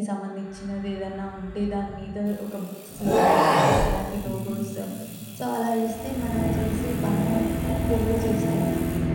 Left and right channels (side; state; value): both; identical; correlation 1.00